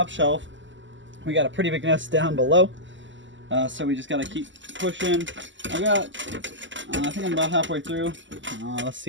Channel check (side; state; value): left; late; 0.54 ms